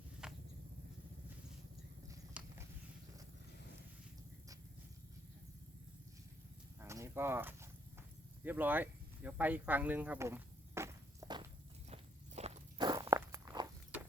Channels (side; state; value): both; normal; correlation 0.70